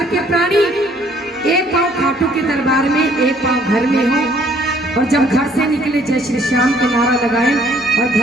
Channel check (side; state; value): both; normal; correlation 0.62